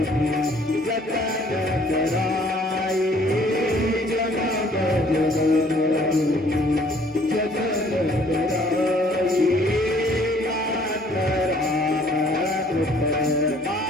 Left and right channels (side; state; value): both; normal; correlation 0.59